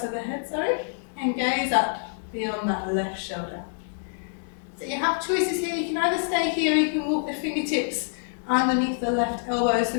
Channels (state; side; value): silent; right; digital silence